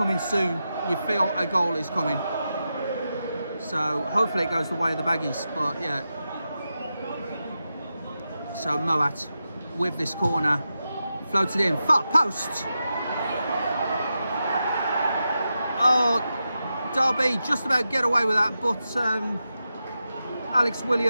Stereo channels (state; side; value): inverted; both; correlation -0.89